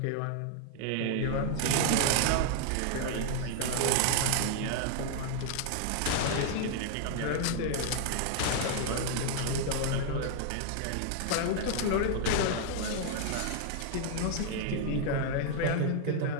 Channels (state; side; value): different; both; correlation 0.00